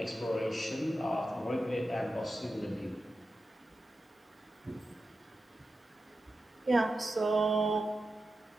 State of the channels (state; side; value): normal; both; correlation 0.91